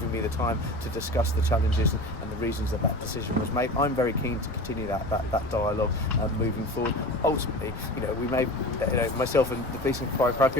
me the time to discuss the challenges and the reasons that decision was made. I'm very keen to continue that dialogue moving forward. Ultimately, we may, myself and the Police and Fire and Crime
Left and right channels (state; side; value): noise; left; rumble, 12 dB below the sound